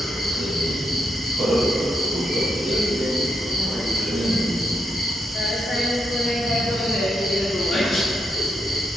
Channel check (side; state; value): both; normal; correlation 0.82